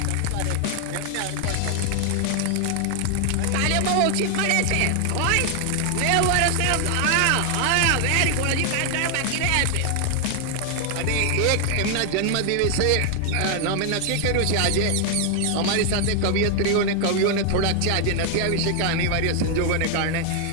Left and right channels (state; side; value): different; both; correlation 0.00